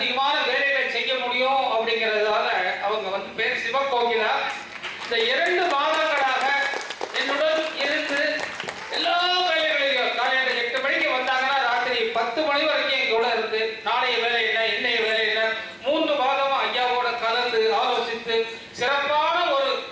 வேலைகளை செய்ய முடியும் அப்படிங்கிறதால அவங்க வந்து பேர் சிவகோகிலா. இந்த 2 மாதங்களாக என்னுடன் இருந்து எல்லா வேலைகளையும் காலையில 8 மணிக்கு வந்தாங்கன்னா ராத்திரி 10 மணி வரைக்கும் எங்களோட இருந்து நாளைய வேலை என்ன இன்னைய வேலை என்ன 3 மாதமா ஐயாவோட கலந்து ஆலோசித்து சிறப்பான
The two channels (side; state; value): both; identical; correlation 1.00